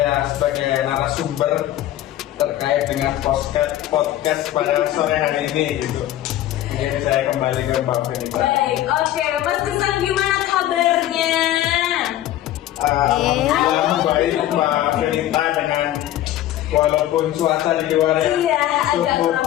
sebagai narasumber terkait dengan podcast pada sore hari ini gitu. Jadi saya kembali ke Mbak Fenita. Baik, oke, Mas Kesan gimana kabarnya? Alhamdulillah baik Mbak Fenita, dengan walaupun cuaca di luar ya Iya, agak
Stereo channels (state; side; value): quieter; right; 13.4 dB